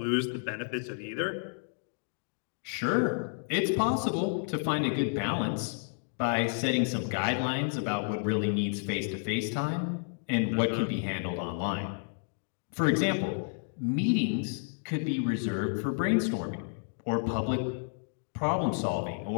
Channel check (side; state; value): right; silent; digital silence